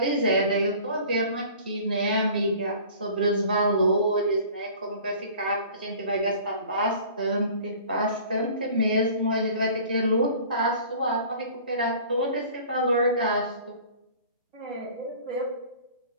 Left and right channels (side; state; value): both; inverted; correlation -0.46